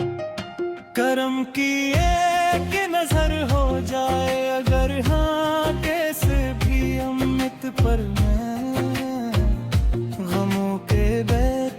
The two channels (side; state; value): both; identical; correlation 1.00